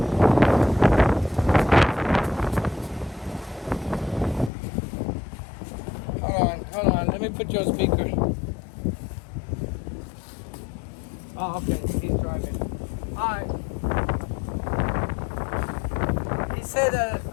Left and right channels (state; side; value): drops out; right; at 4.5 s